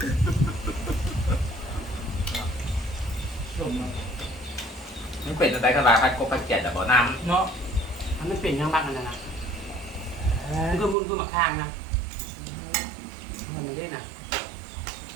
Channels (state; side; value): drops out; left; at 11.0 s